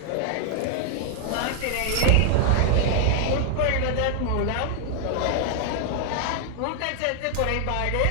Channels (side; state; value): both; different; correlation 0.00